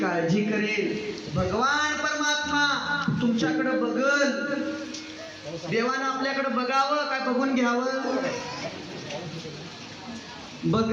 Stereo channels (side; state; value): both; identical; correlation 1.00